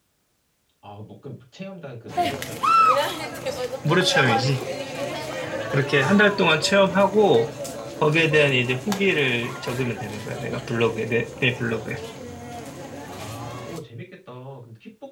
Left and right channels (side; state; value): both; identical; correlation 1.00